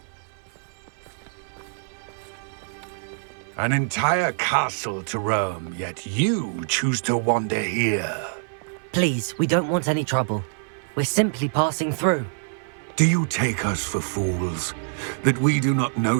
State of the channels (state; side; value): silent; left; 59 dB below the other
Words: An entire castle to roam, yet you choose to wander here. Please, we don't want any trouble. We're simply passing through. Do you take us for fools? That we do not